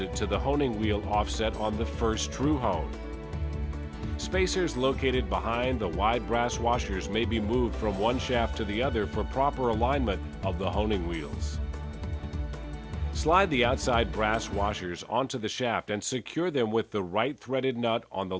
to the honing wheel offset on the first Tru Hone. Spacers located behind the wide brass washers may be moved from one shaft to the other for proper alignment of the honing wheels. Slide the outside brass washers onto the shaft and secure them with the right threaded nut on the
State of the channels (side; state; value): both; identical; correlation 1.00